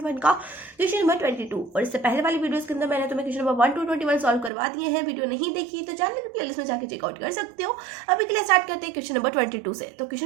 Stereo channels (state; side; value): drops out; left; at 4.5 s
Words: का क्वेश्चन नंबर 22. और इससे पहले वाली वीडियोस के अंदर मैंने तुम्हें क्वेश्चन नंबर 1 to 21 सॉल्व करवा दिए हैं. वीडियो नहीं देखी तो चैनल की प्लेलिस्ट में जाकर चेकआउट कर सकते हो. अभी के लिए स्टार्ट करते हैं क्वेश्चन नंबर 22 से. तो